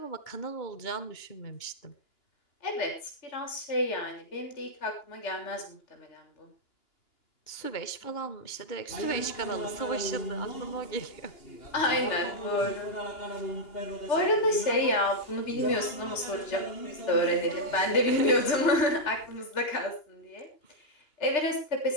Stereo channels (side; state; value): right; late; 2.9 ms